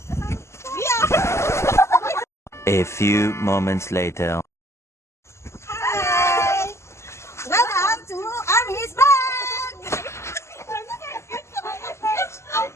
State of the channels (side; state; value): right; late; 0.13 ms